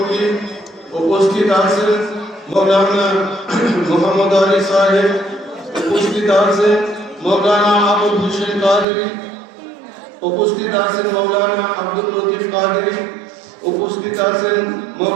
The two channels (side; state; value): left; drops out; at 8.8 s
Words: উপস্থিত আছেন মৌলানা মোহাম্মদ আলী সাহেব, উপস্থিত আছেন মৌলানা আবুল হোসেন কাদেরী, উপস্থিত আছেন মৌলানা আব্দুল লতিফ কাদেরী, উপস্থিত আছেন